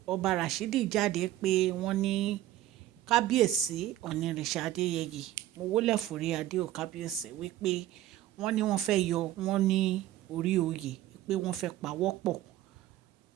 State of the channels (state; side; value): quieter; left; 13.9 dB